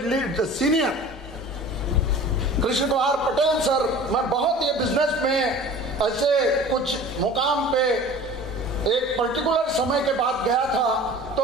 lead senior Krishna Kumar Patel sir, मैं बहुत ये बिजनेस में ऐसे कुछ मुकाम पे एक पर्टिकुलर समय के बाद गया था, तो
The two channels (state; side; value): normal; both; correlation 0.42